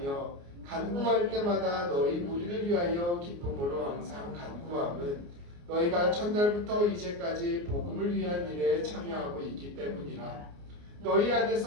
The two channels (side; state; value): left; late; 29 ms